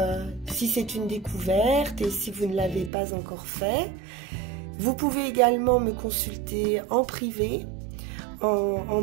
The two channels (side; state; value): left; drops out; at 2.9 s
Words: c'est une découverte et si vous ne l'avez pas encore fait. Vous pouvez également me consulter en privé en